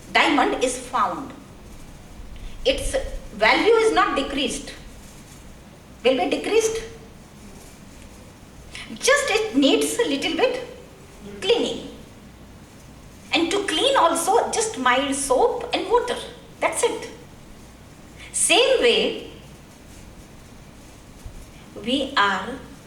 diamond is found. Its value is not decreased. Will be decreased? Just it needs a little bit cleaning. And to clean also, just mild soap and water. That's it. Same way, we are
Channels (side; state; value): both; identical; correlation 1.00